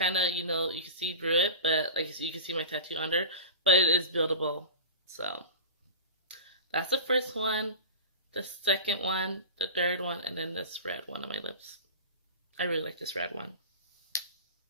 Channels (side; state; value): both; inverted; correlation -0.32